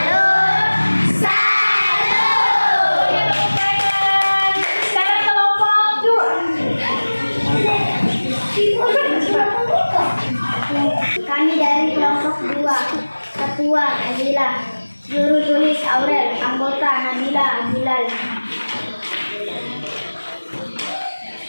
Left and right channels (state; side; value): inverted; both; correlation -1.00